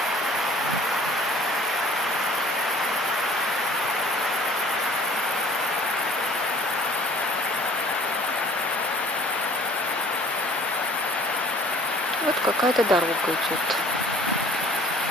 Вот какая-то дорога идет.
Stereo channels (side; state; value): both; normal; correlation 0.49